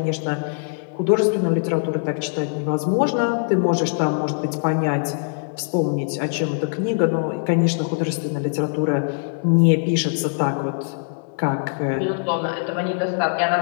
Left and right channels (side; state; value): right; silent; 64 dB below the other